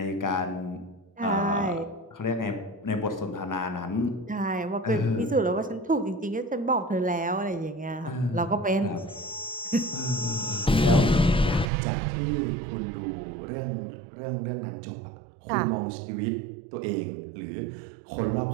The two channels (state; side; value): drops out; left; at 11.7 s